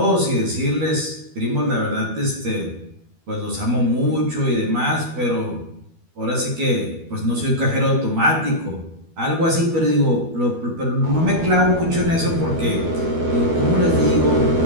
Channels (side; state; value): left; late; 12 ms